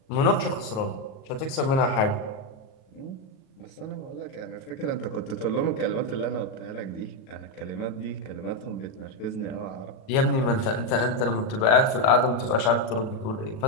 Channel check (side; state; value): right; late; 37 ms